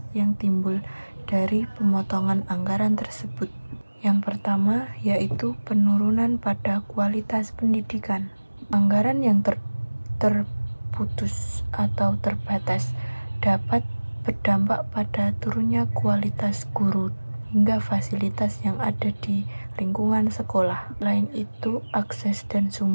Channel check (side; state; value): both; inverted; correlation -1.00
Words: yang timbul dari pemotongan anggaran tersebut. Yang pertama yaitu penurunan pada kualitas pendidikan. Anggaran yang terputus atau terbatas dapat berdampak pada turunnya kualitas guru hingga fasilitas yang ada di lingkungan sekolah. Selain itu, akses dan